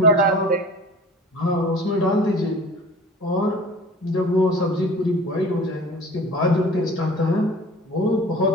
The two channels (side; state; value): both; normal; correlation 0.43